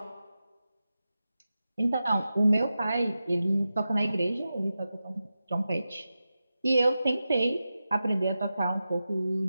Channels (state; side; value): inverted; both; correlation -0.92